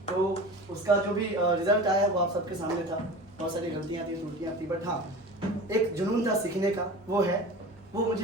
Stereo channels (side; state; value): both; normal; correlation 0.35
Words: तो उसका जो भी रिजल्ट आया वो आप सबके सामने था। बहुत सारी गलतियाँ थी, त्रुटियाँ थी, बट हाँ, एक जुनून था सीखने का, वो है। वो